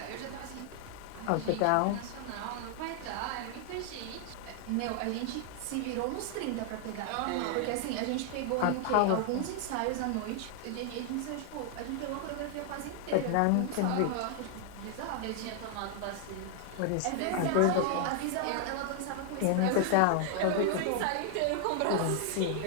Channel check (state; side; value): different; both; correlation 0.00